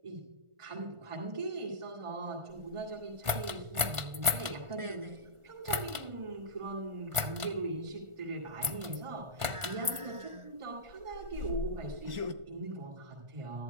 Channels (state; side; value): late; left; 1.4 ms